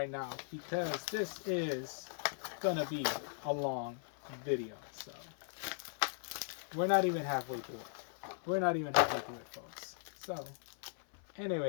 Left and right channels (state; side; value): silent; right; 52 dB below the other